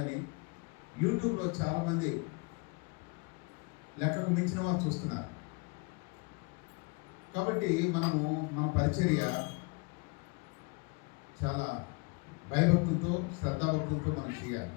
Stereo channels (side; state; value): right; quieter; 30.1 dB